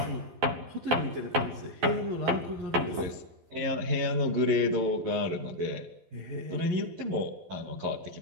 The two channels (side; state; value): left; late; 12 ms